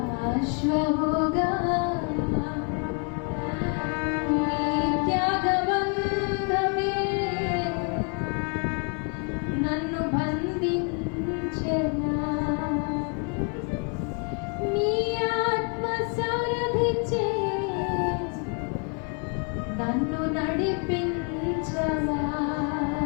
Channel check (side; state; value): right; quieter; 36.7 dB